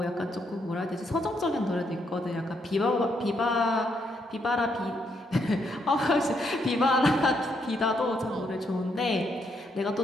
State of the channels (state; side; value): normal; both; correlation 0.76